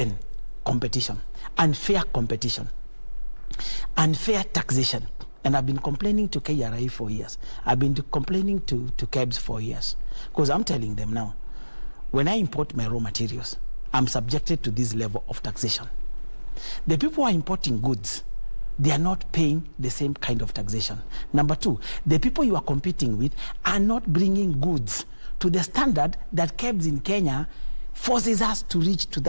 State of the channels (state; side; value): inverted; both; correlation -1.00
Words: competition, unfair competition, unfair taxation. And I've been complaining to KRI for years. I've been complaining to KEBS for years. Because I'm telling them now, when I import my raw materials, I'm subjected to this level of taxation. The people who are importing goods, they are not paying the same kind of taxation. Number two, the people you are competing with are not bringing goods to the standard that KEBS in Kenya forces us to reach to